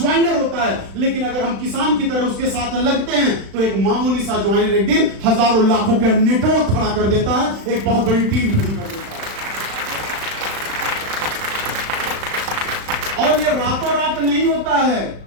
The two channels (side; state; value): left; late; 36 ms